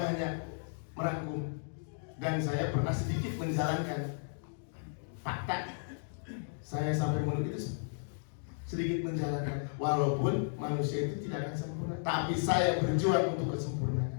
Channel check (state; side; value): silent; right; digital silence